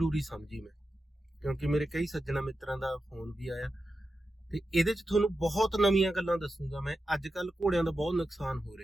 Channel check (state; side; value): normal; both; correlation 0.90